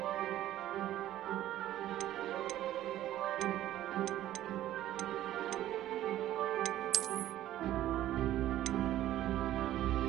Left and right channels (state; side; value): quieter; left; 13.4 dB